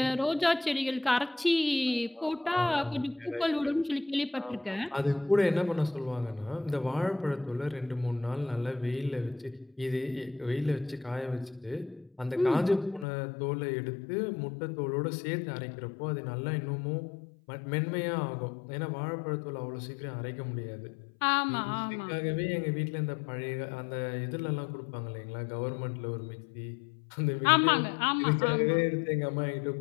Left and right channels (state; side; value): drops out; right; at 13.1 s